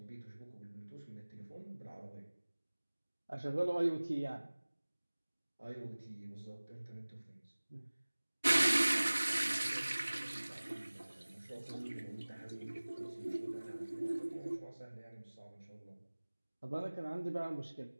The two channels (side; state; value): both; inverted; correlation -1.00